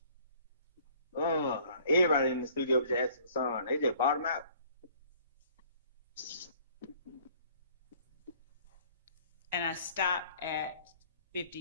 Everybody in the studio was just asking for song. They just bought them out. And I stopped at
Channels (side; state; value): both; inverted; correlation -0.56